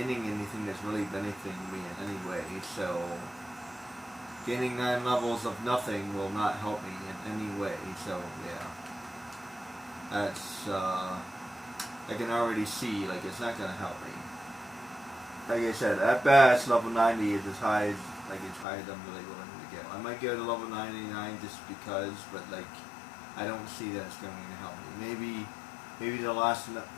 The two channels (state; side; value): drops out; right; at 18.7 s